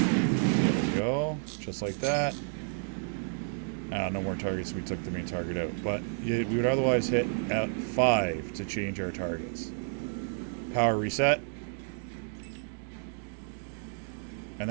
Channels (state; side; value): silent; left; 57 dB below the other